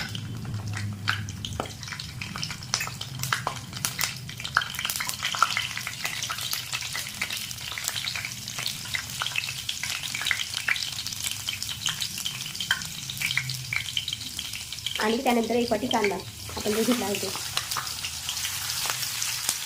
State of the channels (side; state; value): both; identical; correlation 1.00